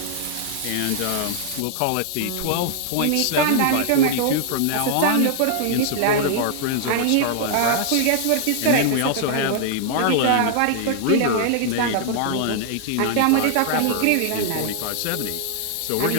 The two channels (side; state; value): both; different; correlation 0.00